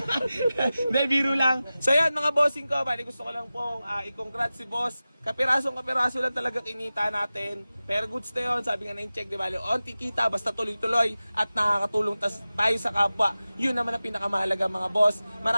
Hindi, biro lang. So yan mga bossing ko, bali gusto ko lang pong i-congrats si boss. Kapiraso lang talaga kinita natin. Pero goods na yun, sabi nga na yung check, di bali, onti kita, basta tuloy-tuloy at nakakatulong tayo sa kapwa. Yun naman ang pinakamahalaga mga boss.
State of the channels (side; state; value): both; inverted; correlation -0.96